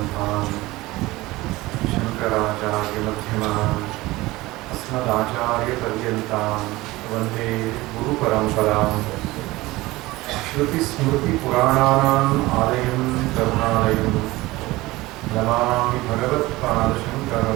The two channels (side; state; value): left; quieter; 19.6 dB